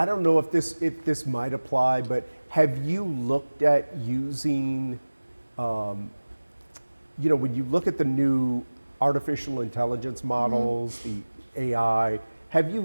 don't know if this might apply, but have you looked at using, you know, when you look at the new artificial intelligence models, the AI, have you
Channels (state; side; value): inverted; both; correlation -1.00